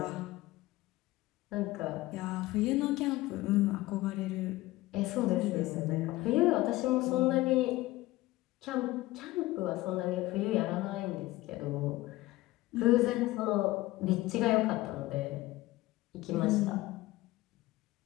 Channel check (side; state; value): right; quieter; 18.2 dB